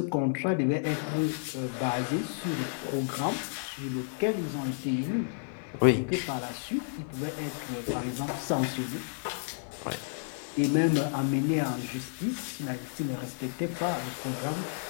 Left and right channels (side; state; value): right; silent; digital silence